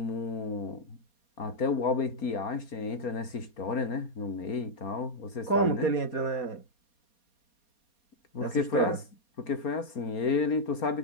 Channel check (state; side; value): late; right; 4.3 ms